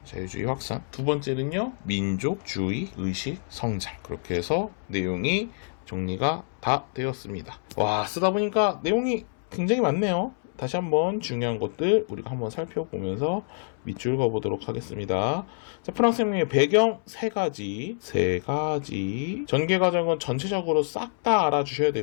자유주의 확산. 두 번째는요, 민족주의 의식 성장. 그렇게 해서 내용이 정리가 다 되었습니다. 와, 쓰다 보니까 내용이 굉장히 많네요. 다시 한번 중요한 것들 우리가 한번 살펴보면서 밑줄 그어보도록 하겠습니다. 자, 프랑스 혁명의 배경 세 가지. 전개 과정은 전체적으로 싹 다 알아주셔야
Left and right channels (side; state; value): right; silent; 60 dB below the other